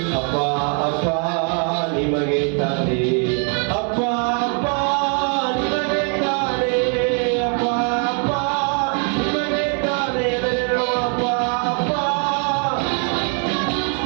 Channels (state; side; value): quieter; left; 36.9 dB